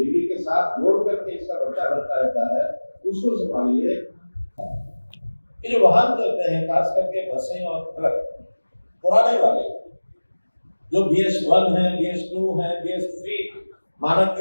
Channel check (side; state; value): both; inverted; correlation -1.00